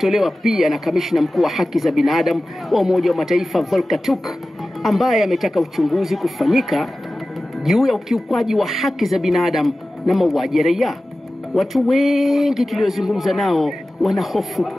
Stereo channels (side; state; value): both; normal; correlation 0.96